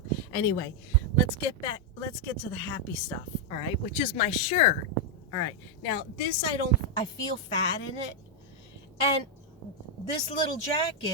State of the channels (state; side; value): normal; both; correlation -0.01